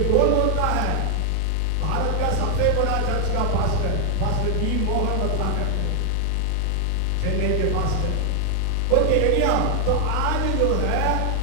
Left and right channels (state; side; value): different; both; correlation 0.00